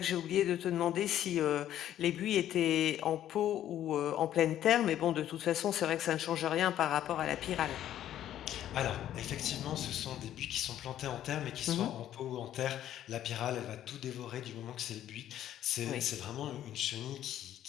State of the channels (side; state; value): right; quieter; 11.7 dB